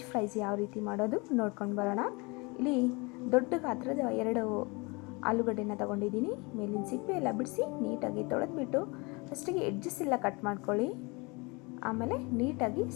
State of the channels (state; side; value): quieter; right; 27.5 dB